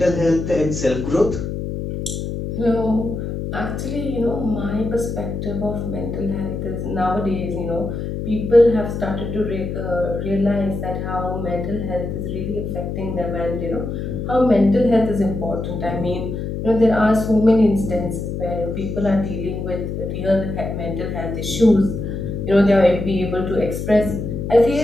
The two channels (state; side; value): noise; left; hum, 4 dB below the sound